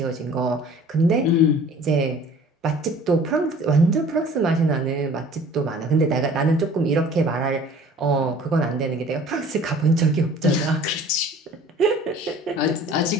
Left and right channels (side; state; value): both; normal; correlation 0.48